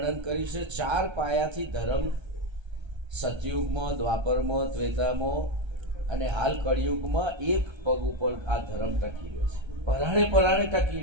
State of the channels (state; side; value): late; left; 1.3 ms